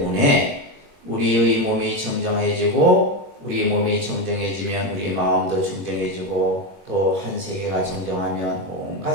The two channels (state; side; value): late; left; 21 ms